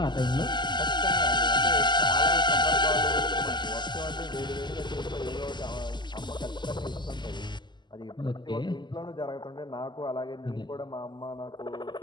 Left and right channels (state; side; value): late; right; 0.21 ms